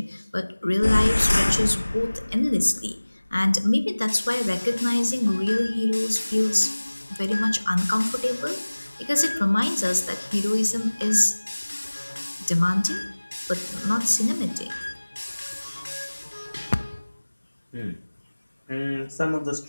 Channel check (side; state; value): both; inverted; correlation -1.00